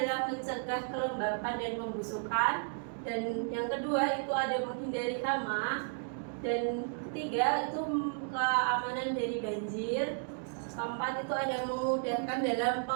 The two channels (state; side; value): silent; left; digital silence